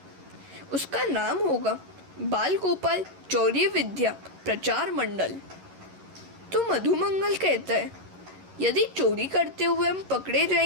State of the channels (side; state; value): left; late; 11 ms